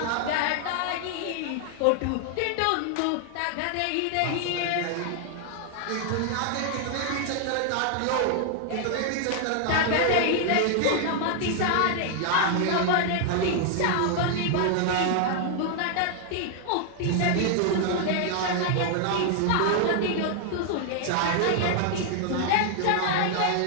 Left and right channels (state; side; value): different; both; correlation 0.00